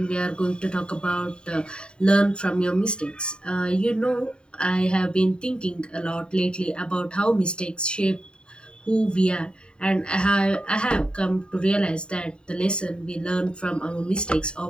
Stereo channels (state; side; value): late; right; 0.051 ms